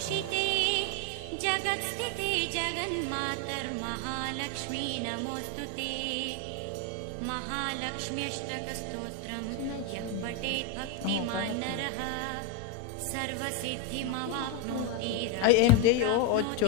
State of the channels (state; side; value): different; both; correlation 0.02